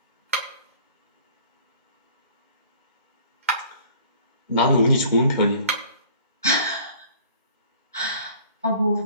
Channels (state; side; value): inverted; both; correlation -0.51